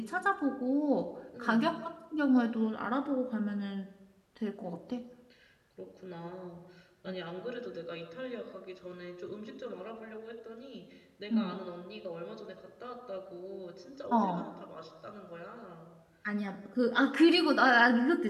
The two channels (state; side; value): identical; both; correlation 1.00